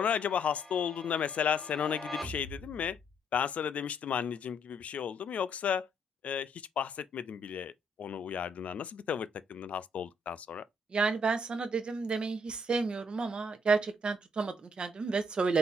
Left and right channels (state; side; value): normal; both; correlation 0.69